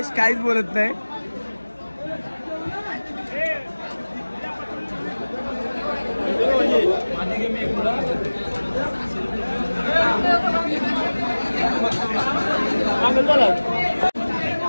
काहीच बोलत नाही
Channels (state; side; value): inverted; both; correlation -1.00